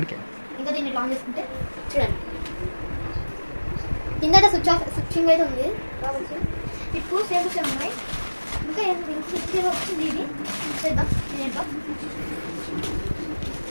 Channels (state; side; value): inverted; both; correlation -1.00